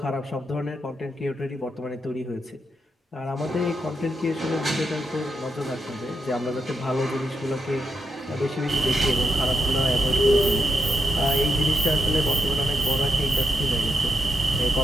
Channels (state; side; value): normal; both; correlation 0.83